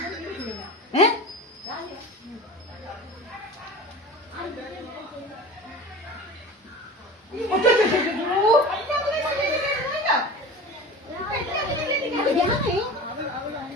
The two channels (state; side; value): normal; both; correlation 0.34